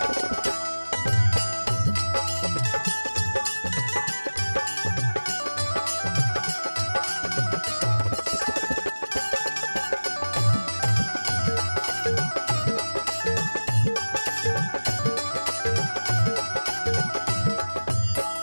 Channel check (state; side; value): inverted; both; correlation -1.00